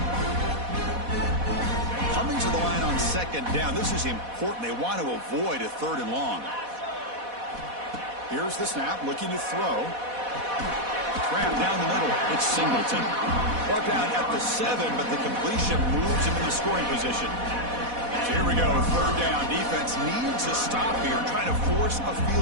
Coming to the line on second down, this is important. They want to avoid a third and long. Here's the snap, looking to throw. Cram down the middle. It's Singleton. Brought down at the 7, but the completion moves him into scoring position. So here we go, third down. Defense needs a stop here, trying to force a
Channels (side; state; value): left; late; 4.1 ms